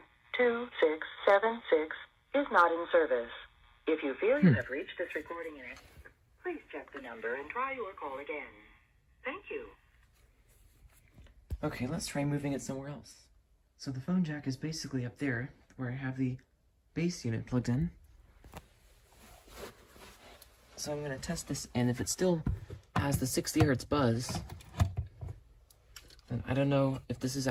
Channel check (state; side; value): identical; both; correlation 1.00